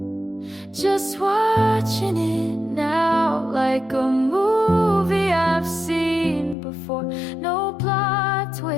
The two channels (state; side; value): drops out; right; at 6.6 s